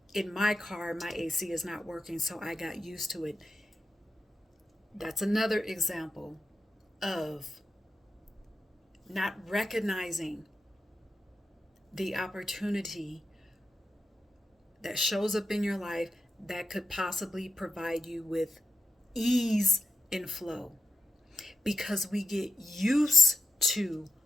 in my car, my AC is not working, so I got used to it." That's another example of not recognizing the opportunity that shows up in your life that could possibly provide you with ease and flow, because we get used to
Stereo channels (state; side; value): normal; both; correlation 0.89